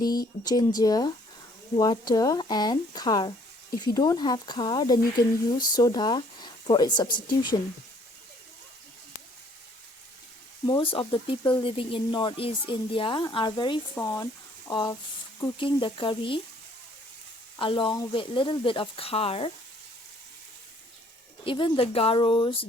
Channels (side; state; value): both; normal; correlation 0.61